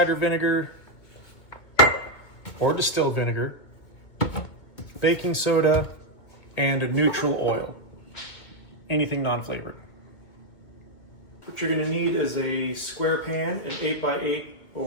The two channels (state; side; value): late; right; 2.2 ms